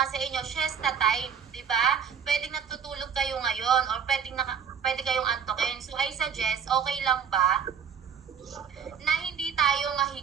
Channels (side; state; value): left; quieter; 7.5 dB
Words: sa inyo, siesta time, di ba? Pwedeng natutulog kayo ngayon or pwede kayong antokin. So I suggest, okay lang ba na hindi tayo